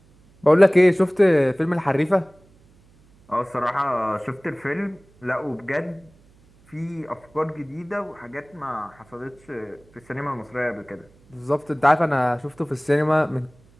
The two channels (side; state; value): right; noise; hum, 30 dB below the sound